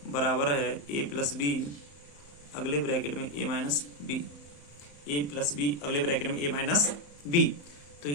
बराबर है A प्लस B अगले ब्रैकेट में A minus B, A plus B अगले ब्रैकेट में A माइनस B। तो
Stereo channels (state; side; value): late; right; 34 ms